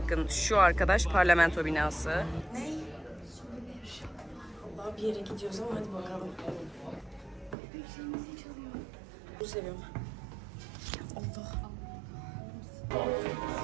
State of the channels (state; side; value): drops out; left; at 7.6 s